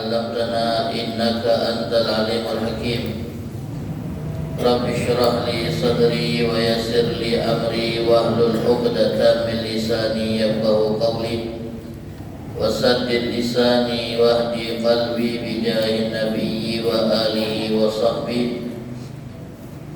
innaka antal alimul hakim. Rabbi syrah li sadri wa yassir li amri wahlul 'uqdatam min lisani yafqahu qawli wasaddid lisani wahdi qalbi bijahin nabiyyi wa alihi wa sahbihi.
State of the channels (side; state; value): both; identical; correlation 1.00